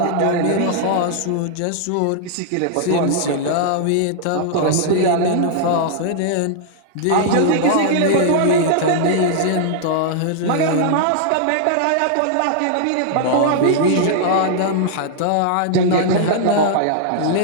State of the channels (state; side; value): different; both; correlation -0.01